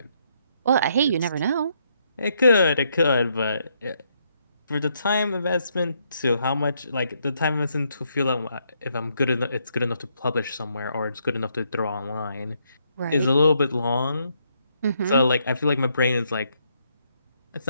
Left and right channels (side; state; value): both; inverted; correlation -0.74